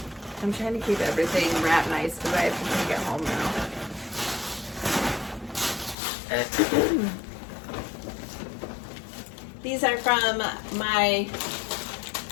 I'm trying to keep everything wrapped nice because I have to take it home now. These are from my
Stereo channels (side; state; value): right; drops out; at 6.0 s